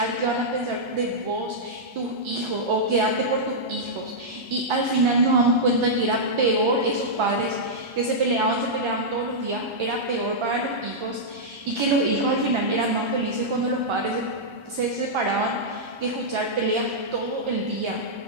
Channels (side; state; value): left; late; 1.3 ms